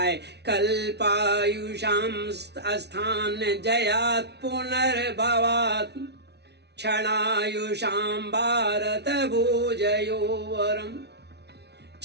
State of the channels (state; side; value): late; left; 0.49 ms